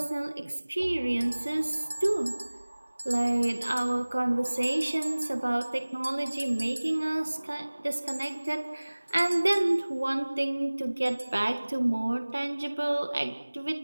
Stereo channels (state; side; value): inverted; both; correlation -1.00